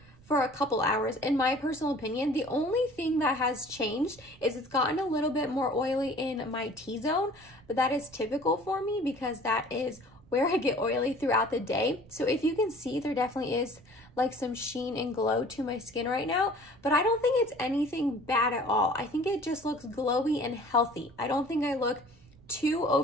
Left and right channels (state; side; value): noise; right; rumble, 25 dB below the sound